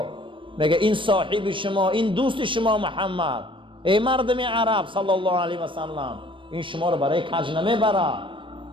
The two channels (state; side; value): late; left; 0.25 ms